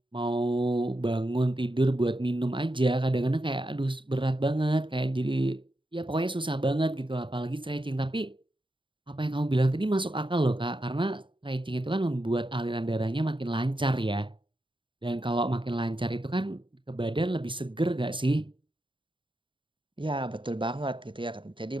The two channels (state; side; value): late; left; 0.24 ms